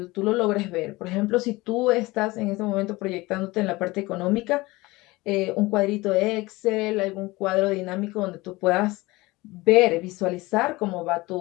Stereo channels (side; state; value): right; quieter; 21.2 dB